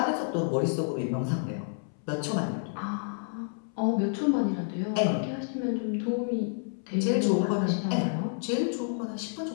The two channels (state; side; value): silent; right; 58 dB below the other